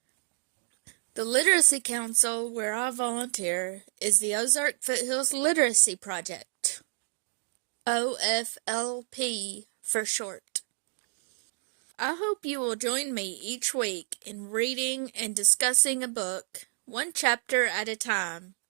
The Literacy Council where I volunteer is the Ozark Foothills Literacy Project, OFLP for short. I hope you will join me each week in reading and discussing a book, one chapter at a time.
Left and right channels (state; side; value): silent; left; digital silence